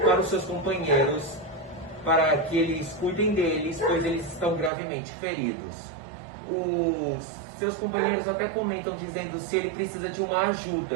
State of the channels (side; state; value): left; drops out; at 4.7 s